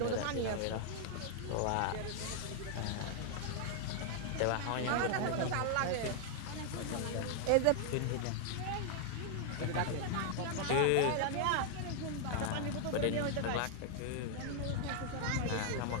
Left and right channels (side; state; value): both; different; correlation 0.00